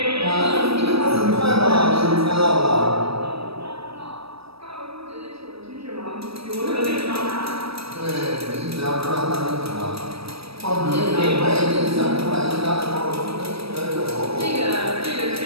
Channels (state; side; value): late; left; 0.77 ms